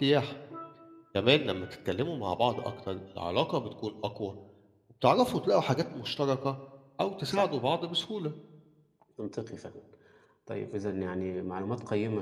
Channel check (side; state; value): both; identical; correlation 1.00